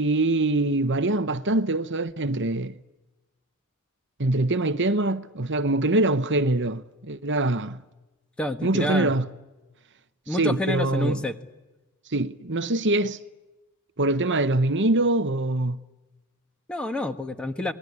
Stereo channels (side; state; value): both; normal; correlation 0.31